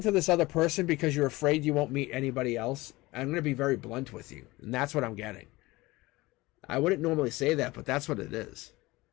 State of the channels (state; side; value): quieter; right; 20.7 dB